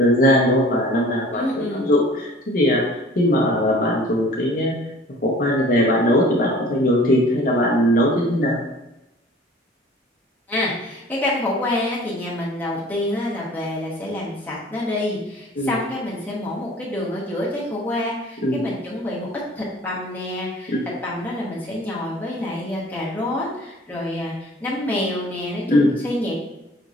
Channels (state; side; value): normal; both; correlation 0.48